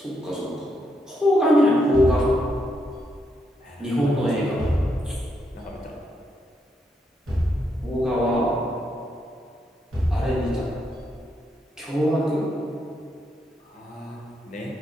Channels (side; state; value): both; normal; correlation 0.79